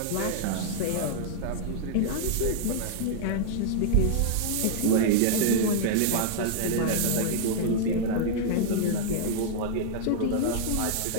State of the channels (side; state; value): both; different; correlation -0.01